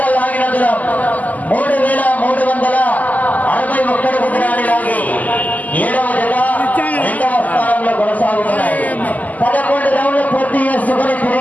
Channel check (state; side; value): late; right; 0.079 ms